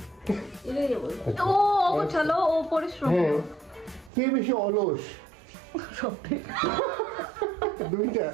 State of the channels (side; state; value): left; drops out; at 4.1 s